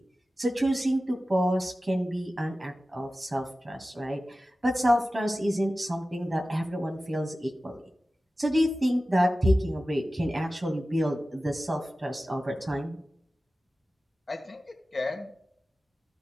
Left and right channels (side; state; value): both; normal; correlation 0.95